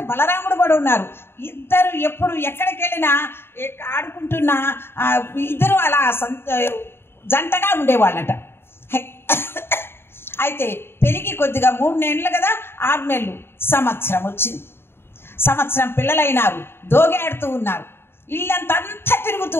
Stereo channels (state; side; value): late; right; 0.11 ms